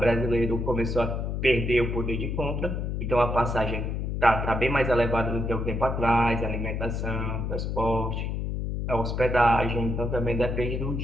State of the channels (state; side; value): noise; left; hum, 2 dB below the sound